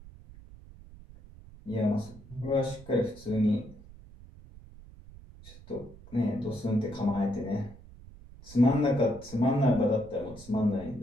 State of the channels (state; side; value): noise; right; rumble, 19 dB below the sound